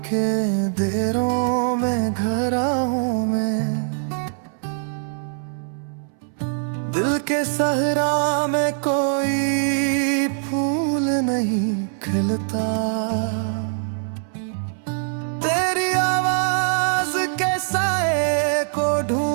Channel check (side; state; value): left; silent; 64 dB below the other